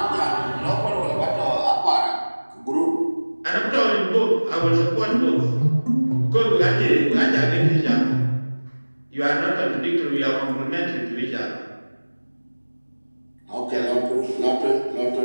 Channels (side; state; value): both; inverted; correlation -1.00